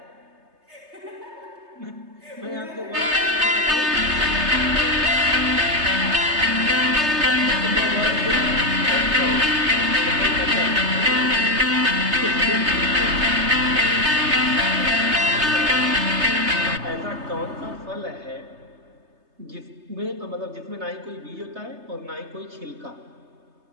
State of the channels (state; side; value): late; left; 3.3 ms